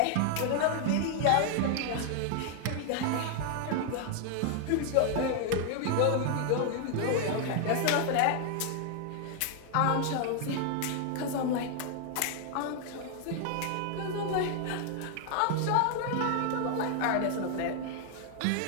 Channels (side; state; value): both; different; correlation 0.00